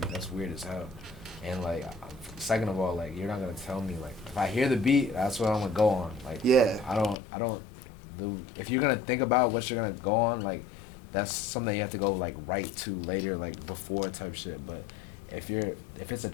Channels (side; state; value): right; drops out; at 7.2 s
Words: That's weird as hell. And like, second of all, like, you're not gonna tell me like if I hear the beat, that's what I'm gonna go on. Like, Yeah. I don't. If you're gonna think about what you're gonna go on, like, that's something you have to go like right to later, like before type shit. But if it's a